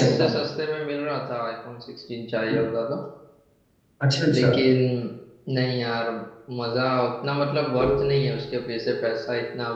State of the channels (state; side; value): identical; both; correlation 1.00